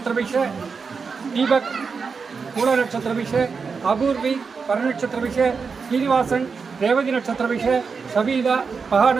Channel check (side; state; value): left; quieter; 5.2 dB